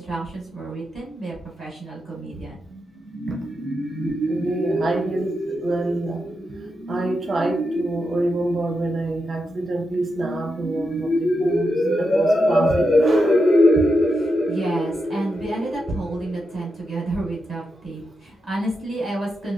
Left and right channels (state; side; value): normal; both; correlation 0.86